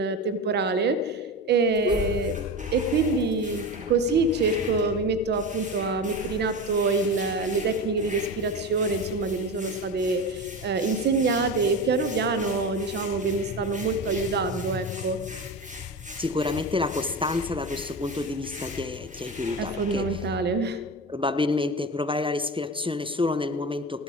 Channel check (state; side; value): normal; both; correlation 0.25